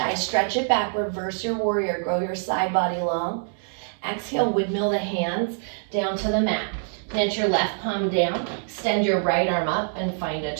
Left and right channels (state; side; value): silent; left; digital silence